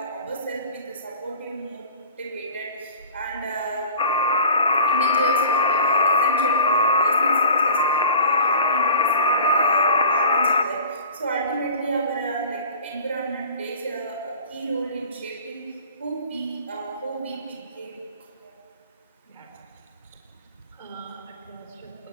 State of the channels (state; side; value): inverted; both; correlation -0.42